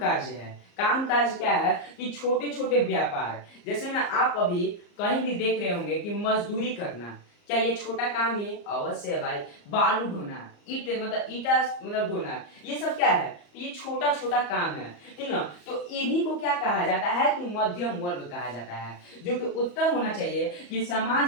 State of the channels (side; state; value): right; late; 34 ms